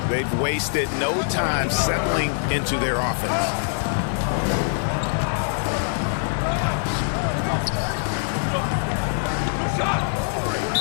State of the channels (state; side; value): silent; right; digital silence